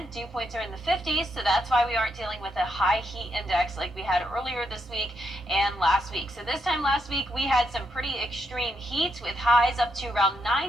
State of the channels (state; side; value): normal; both; correlation 0.79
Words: Dew points are in the 50s, so that's why we aren't dealing with a high heat index like we had earlier this week and last week. So this time last week, we had some pretty extreme heat with highs up to around